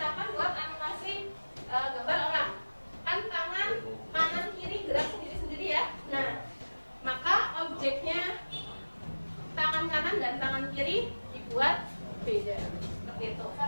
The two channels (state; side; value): inverted; both; correlation -1.00